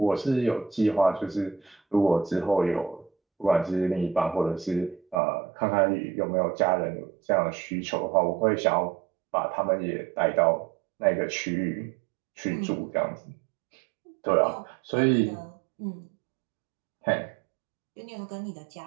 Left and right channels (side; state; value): left; drops out; at 5.2 s